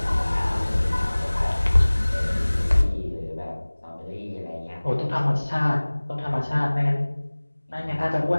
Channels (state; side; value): inverted; both; correlation -1.00